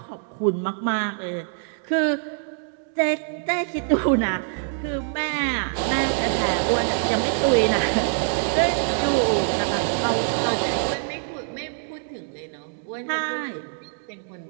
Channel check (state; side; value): silent; left; digital silence